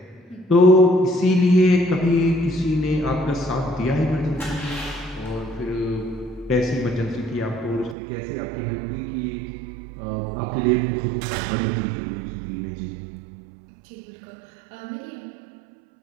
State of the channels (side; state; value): left; drops out; at 8.0 s